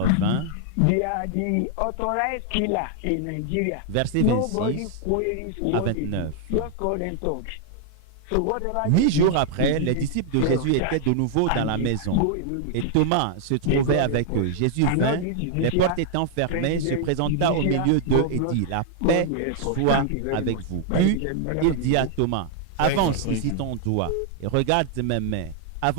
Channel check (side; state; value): both; different; correlation 0.00